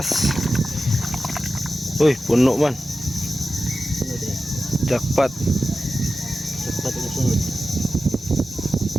Uy, puno man. Sunod eh. Jackpot. Cepat ini sunod.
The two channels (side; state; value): both; normal; correlation 0.93